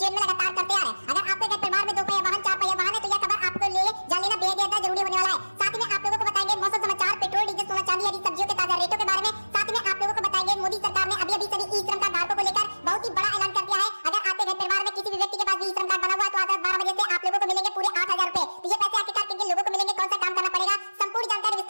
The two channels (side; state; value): both; inverted; correlation -1.00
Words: जीवन में लगातार करते आ रहे हैं। अगर आपके घर परिवार में 2 पहिया वाहन, 4 पहिया वाहन है, तो यह खबर आपको जान लेना बेहद ज्यादा जरूरी होने वाला है। साथ में आप लोगों को बताएंगे मौसम समाचार, पेट्रोल, डीजल, सोना, चांदी आदि सब्जियों के ताजा रेटों के बारे में। साथ में आप लोगों को बताएंगे मोदी सरकार ने अभी सभी ई-श्रम कार्ड धारकों को लेकर बहुत ही बड़ा ऐलान कर दिया है। अगर आपके घर परिवार में किसी भी व्यक्ति के पास ई-श्रम कार्ड बना हुआ है, तो आज रात 12 बजे से आप लोगों को मिलेंगे पूरे 8000 रुपए। तो ये पैसे आखिरकार किन लोगों को मिलेंगे, कौन सा काम करना पड़ेगा, संपूर्ण जानकारी